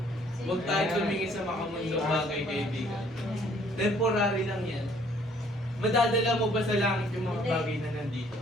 Huwag tayo tumingin sa makamundong bagay, kaibigan. Temporary lang yan. Madadala mo ba sa langit yung mga bagay na nandito?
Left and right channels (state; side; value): normal; both; correlation 0.61